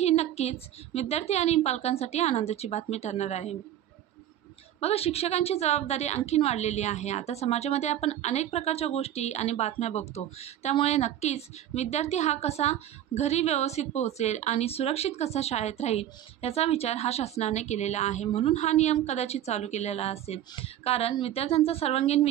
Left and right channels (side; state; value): left; quieter; 11.7 dB